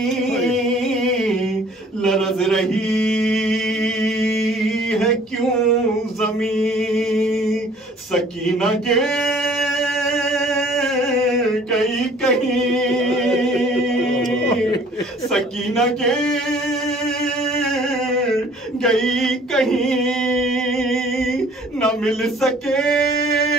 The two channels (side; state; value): both; normal; correlation 0.54